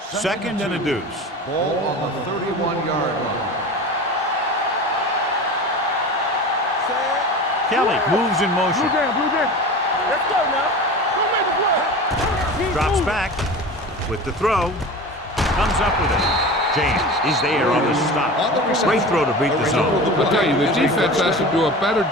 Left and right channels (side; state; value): both; normal; correlation 0.33